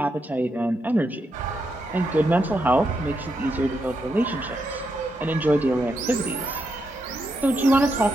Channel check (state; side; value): normal; both; correlation 0.82